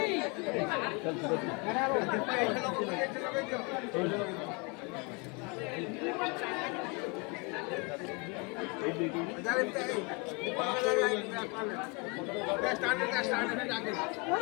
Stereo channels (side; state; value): right; quieter; 30.1 dB